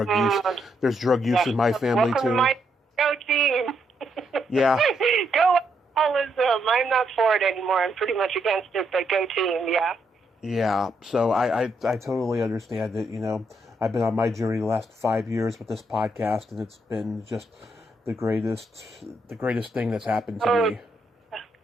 use. There's drug use in my family, welcome too. To my go team. Yeah. Go alcoholism. I'm not for it anymore. I'm pretty much against it, but go team, yeah. Yeah, so I totally understand it. I've been on my journey the last 5 years with this podcast, and it's been just the greatest thing that's happened to me.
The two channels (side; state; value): both; normal; correlation 0.77